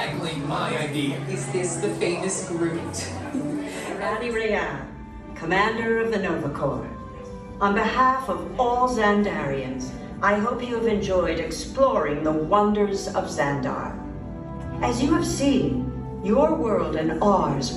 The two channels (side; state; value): both; identical; correlation 1.00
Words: my idea. Is this the famous Groot? Randy Rayan, Commander of the Nova Corps. On behalf of all Xandarians, I hope you have enjoyed exploring the wonders of Xandar. As you have seen, your world and ours